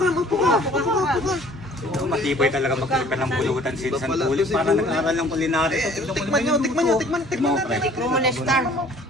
Matibay talaga magkalipan ng pulutan si San Pulis. Para nag-aaral ng kulinary. Tikman nyo. Tikman natin. Tikman mo na star.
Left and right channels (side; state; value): both; normal; correlation 0.53